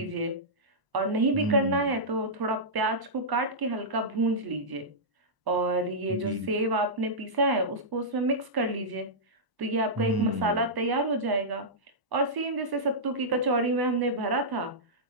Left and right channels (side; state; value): left; late; 1.0 ms